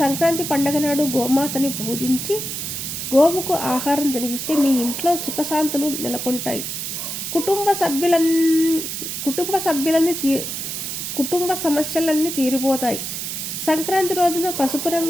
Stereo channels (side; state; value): right; noise; hiss, 5 dB below the sound